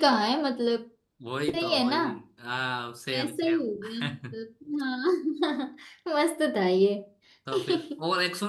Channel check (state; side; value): identical; both; correlation 1.00